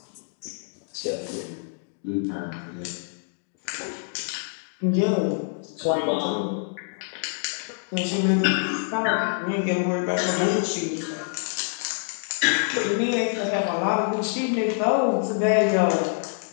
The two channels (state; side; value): silent; right; digital silence